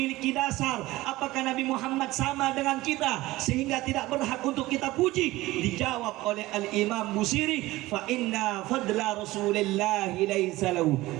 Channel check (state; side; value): quieter; left; 18.4 dB